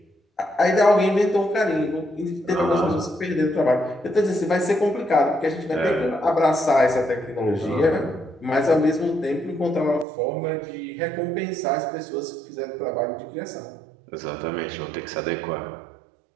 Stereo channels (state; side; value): drops out; left; at 10.1 s